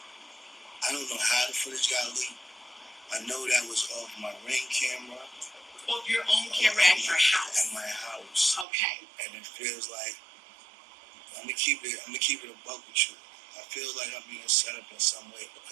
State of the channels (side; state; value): left; drops out; at 8.7 s